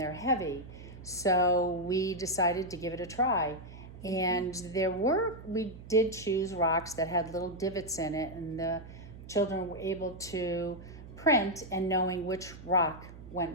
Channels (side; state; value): right; noise; hum, 15 dB below the sound